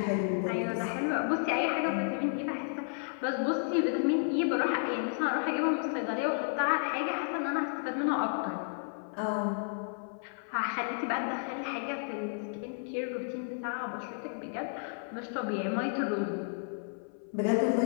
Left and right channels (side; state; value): right; silent; 55 dB below the other